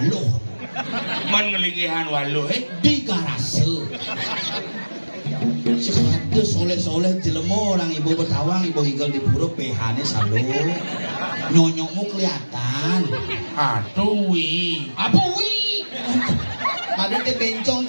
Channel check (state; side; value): inverted; both; correlation -1.00